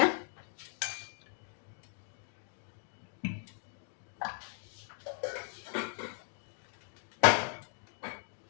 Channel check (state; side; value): silent; right; 53 dB below the other